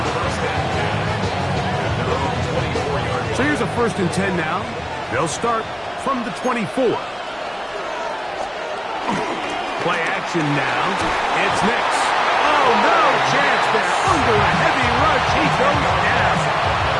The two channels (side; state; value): both; identical; correlation 1.00